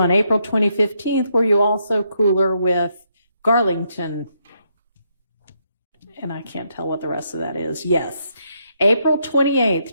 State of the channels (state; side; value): inverted; both; correlation -0.76